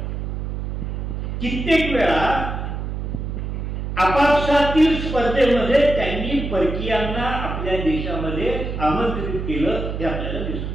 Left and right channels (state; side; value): noise; right; hum, 4 dB below the sound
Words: कित्येक वेळा आपापसातील स्पर्धेमध्ये त्यांनी परकीयांना आपल्या देशामध्ये आमंत्रित केलं हे आपल्याला